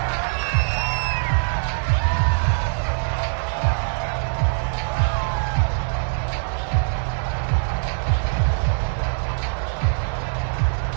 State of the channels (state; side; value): silent; left; digital silence